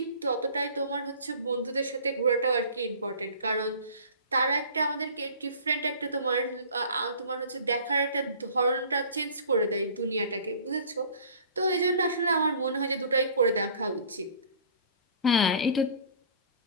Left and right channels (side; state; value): both; inverted; correlation -0.45